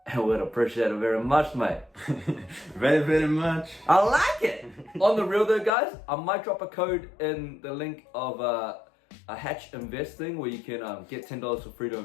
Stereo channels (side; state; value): right; drops out; at 5.7 s